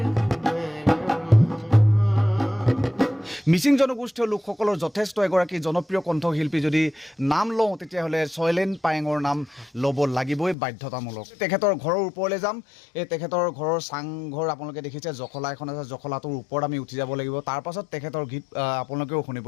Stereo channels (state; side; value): drops out; right; at 10.6 s